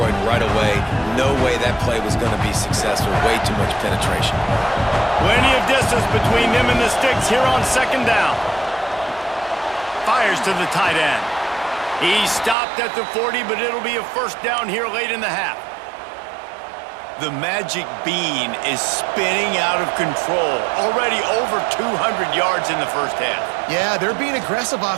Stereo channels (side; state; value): left; drops out; at 12.6 s